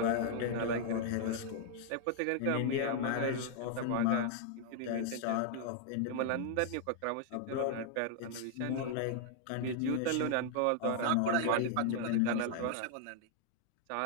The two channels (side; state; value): both; different; correlation 0.00